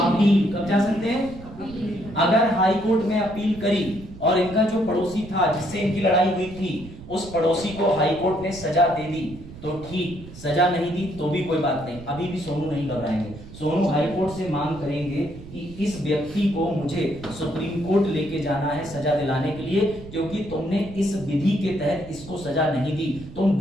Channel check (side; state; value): right; noise; rumble, 16 dB below the sound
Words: कब जा सकते हैं? अगर हाई कोर्ट में अपील करी और इनका जो पड़ोसी था जिससे इनकी लड़ाई हुई थी उस पड़ोसी को हाई कोर्ट ने सजा दे दी तो ठीक, सजा नहीं दी तो भी कोई बात नहीं, अभी भी सोनू नहीं घबराएंगे। सोनू हाई कोर्ट से मांग करेंगे कि इस व्यक्ति को मुझे सुप्रीम कोर्ट लेके जाना है सजा दिलाने के लिए, क्योंकि तुमने इस विधि के तहत इसको सजा नहीं दी, तुम